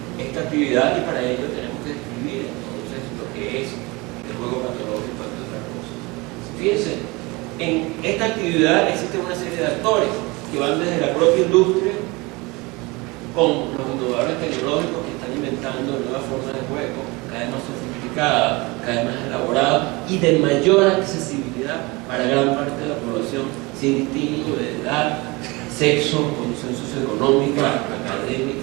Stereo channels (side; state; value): left; quieter; 24.6 dB